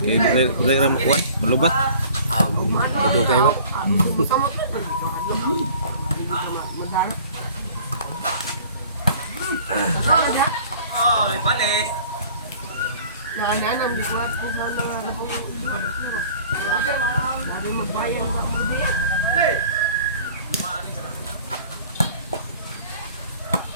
kay dili ra mo kuan, malubat. Ito kayo. Ay, balik. Nananam, di ko at ang sana nga po. Sabi mo bayang ba mo diyan?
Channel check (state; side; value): inverted; both; correlation -0.49